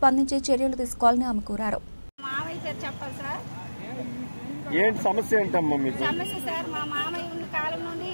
చర్యలు తీసుకోవాలని ఆమె కోరారు. ఏంటి సమస్య ఏంటమ్మా మీకు? సమస్య సార్, మా మామయ్య ఉన్న కాలం నుండి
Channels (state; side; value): inverted; both; correlation -1.00